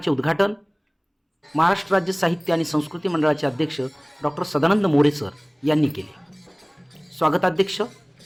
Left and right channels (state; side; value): identical; both; correlation 1.00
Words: उद्घाटन महाराष्ट्र राज्य साहित्य आणि संस्कृती मंडळाचे अध्यक्ष डॉक्टर सदानंद मोरे सर यांनी केले। स्वागताध्यक्ष